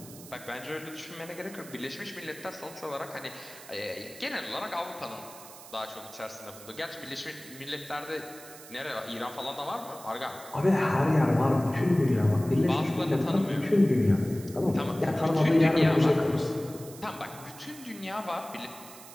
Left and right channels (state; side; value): noise; right; hiss, 17 dB below the sound